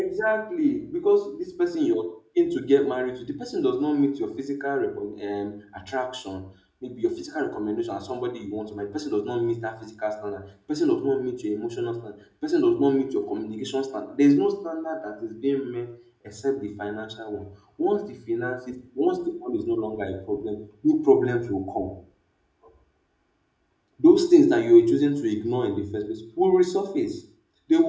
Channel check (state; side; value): identical; both; correlation 1.00